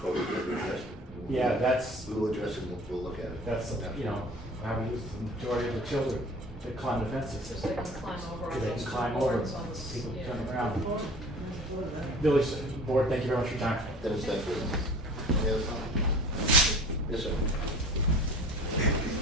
will address it. Yeah, that's. We will address it, we'll look at it. That's, you know, how we use the majority of the children that climb the fences. Because they can climb over on Because they those can climb over, boards on the people yeah. turn around. Village Board, thank you very much for your time. Dennis, thank you. Any other comments? Yes, sir.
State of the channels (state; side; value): normal; both; correlation 0.43